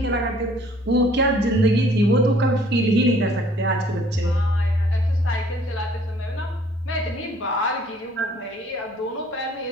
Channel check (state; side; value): normal; both; correlation 0.57